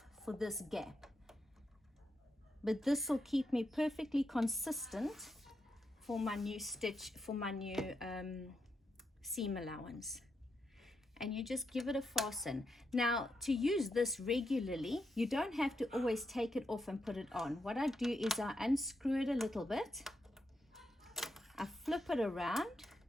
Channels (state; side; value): normal; both; correlation 0.83